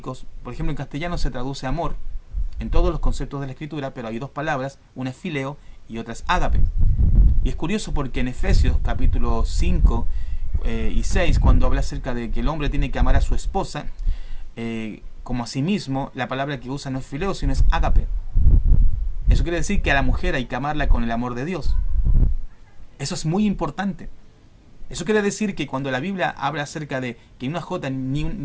por ejemplo en castellano se traduce amor, en todos los conceptos de la Escritura, pero hay dos palabras, una es fileo y otra es ágape. Y es curioso porque en Efesios capítulo 5 y 6, cuando habla acerca de que el hombre tiene que amar a su esposa, como a sí mismo, la palabra que usa no es fileo, sino es ágape. Eso quiere decir que a la mujer hay que amarla con el amor de Dios. Eso es muy importante. Eso quiere decir que cuando la Biblia habla acerca de que una jota ni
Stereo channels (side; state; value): both; identical; correlation 1.00